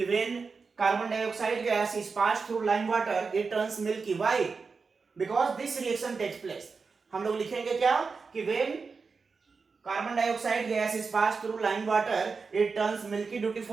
when carbon dioxide gas is passed through lime water it turns milky, why, because this reaction takes place. हम लोग लिखेंगे क्या कि when carbon dioxide gas is passed through lime water it turns milky due to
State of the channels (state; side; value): quieter; left; 4.8 dB